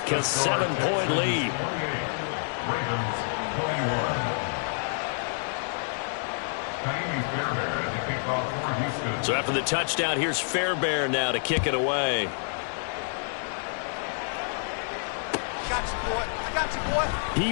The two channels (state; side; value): silent; right; 59 dB below the other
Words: a 7-point lead. So after the touchdown, here's Fairbairn now to kick it away.